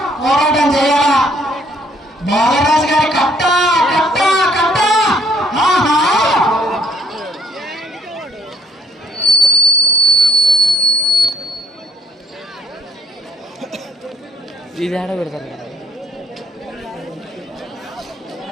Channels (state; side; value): normal; both; correlation 0.64